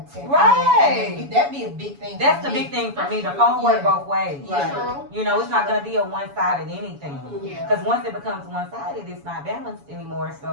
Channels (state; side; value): late; left; 7.1 ms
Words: check in. Right. And that'd be a big thing. That's for the me. big thing for me. The phone work both ways. Right. True. You know, it's not gonna be a one-sided anything. Yeah. Because once it becomes one-sided, it's not balanced anymore.